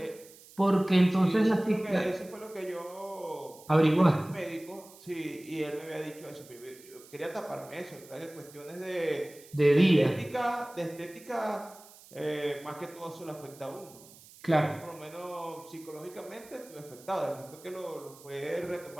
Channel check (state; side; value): noise; right; hiss, 22 dB below the sound